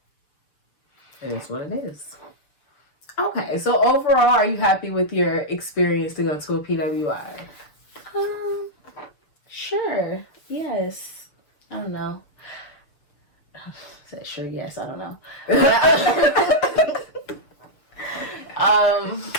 it is what it is. Okay, so overall, are you happy with your experience to go to a PWI? Sure. Yes. I don't know. Said sure, yes, I don't know.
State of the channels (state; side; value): late; right; 6.7 ms